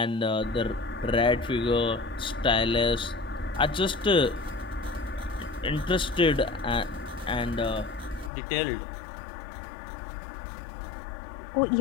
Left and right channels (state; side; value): drops out; right; at 8.3 s